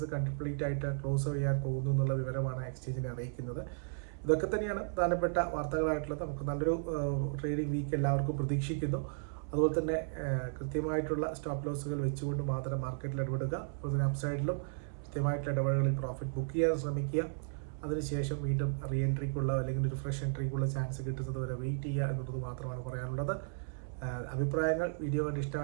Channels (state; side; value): silent; left; 55 dB below the other